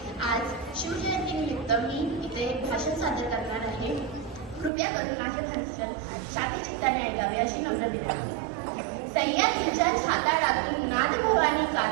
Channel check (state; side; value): drops out; left; at 4.7 s